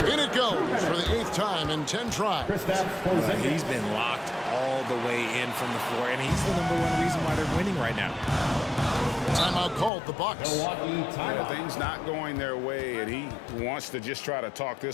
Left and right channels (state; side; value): drops out; right; at 9.9 s